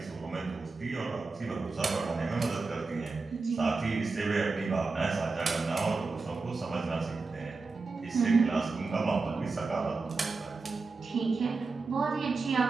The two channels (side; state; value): left; quieter; 4.0 dB